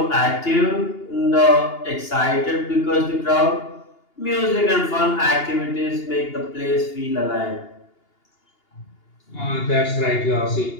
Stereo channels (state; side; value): late; right; 2.8 ms